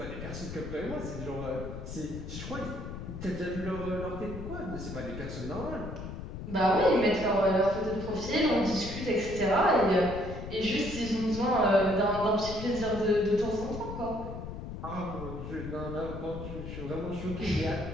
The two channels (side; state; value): left; noise; rumble, 8 dB below the sound